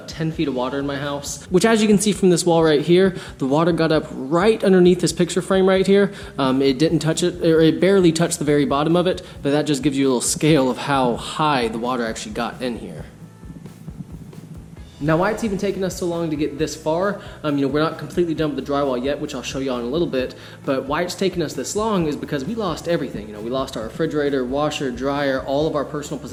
10 feet of water in my house, which, as you can see from this wall right here, the water got up right underneath this picture frame right here. It didn't touch it, or it barely touched the very bottom of it, but that just gives you a little scale of how high the water actually got in here. Now, why it's even taken us so long to get this far, we're not completely done with the drywall yet, which I'll show you all in a little bit, but why it's taken us this long is because we lost everything. We lost our refrigerator, washer, dryer, all of our personal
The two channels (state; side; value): identical; both; correlation 1.00